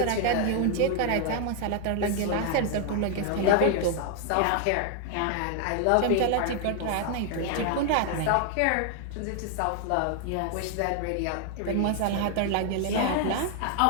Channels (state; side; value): different; both; correlation 0.00